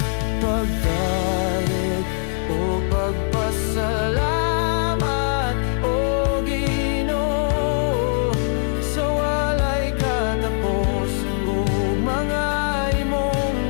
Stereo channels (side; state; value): right; silent; digital silence